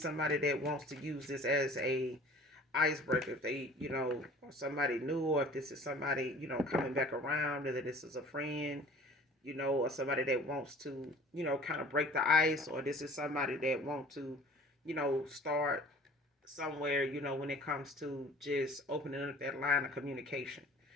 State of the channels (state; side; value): normal; both; correlation 0.47